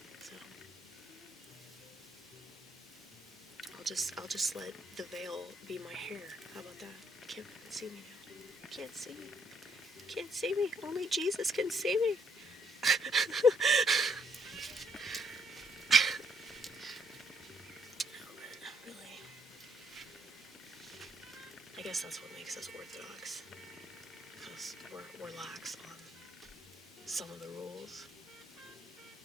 so I'll just let the veil be my hair. How about that? You can't see me now. You can't see me. You can't see me. Only Jesus can see me. Really, I guess that's what makes us Orthodox, because we're lax on some of the rules.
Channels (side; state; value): both; normal; correlation 0.71